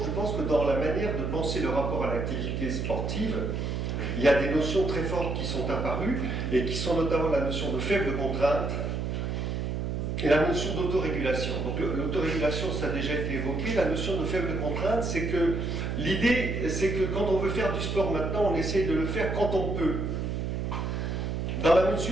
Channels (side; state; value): right; noise; hum, 2 dB below the sound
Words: je pense que dans la manière de penser le rapport à l'activité sportive, il y a des notions très fortes qui sont apparues, et qui sont notamment la notion de faible contrainte, et la notion d'autorégulation. Donc l'autorégulation, ça a déjà été évoqué, la notion de faible contrainte, c'est que l'idée, c'est que quand on veut faire du sport maintenant, on essaie de le faire quand on peut. Dans la